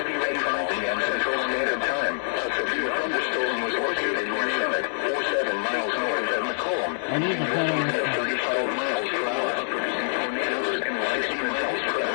rain 5 p.m. Central Standard Time. A severe thunderstorm was located near Summit, 47 miles north of McComb. I need to put on At 35 miles per hour, producing tornadoes and 60 miles per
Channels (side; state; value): right; silent; digital silence